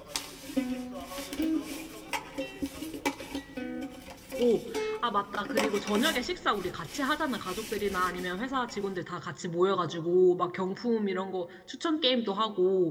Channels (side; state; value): both; identical; correlation 1.00